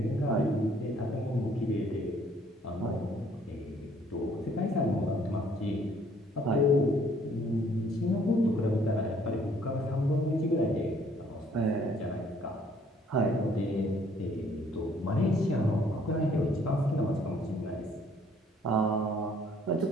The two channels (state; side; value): normal; both; correlation 0.62